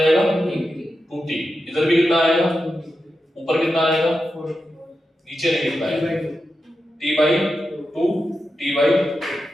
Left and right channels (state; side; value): normal; both; correlation 0.89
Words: 2t, इधर भी कितना आएगा, ऊपर कितना आएगा, नीचे नहीं लिखना है t/2 t/2,